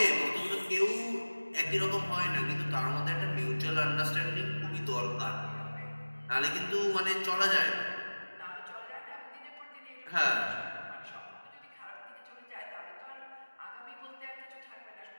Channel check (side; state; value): both; inverted; correlation -1.00